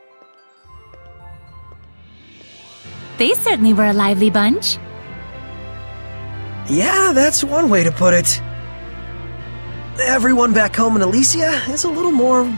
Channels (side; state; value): both; inverted; correlation -1.00